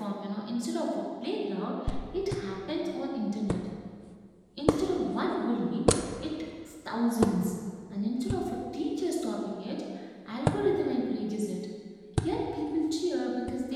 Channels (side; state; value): both; identical; correlation 1.00